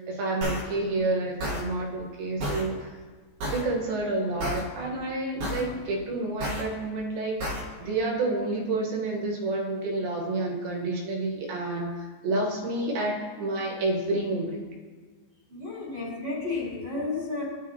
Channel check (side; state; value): left; late; 14 ms